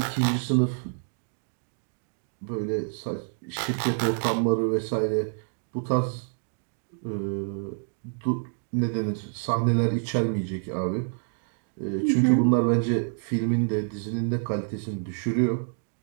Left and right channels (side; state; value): left; silent; digital silence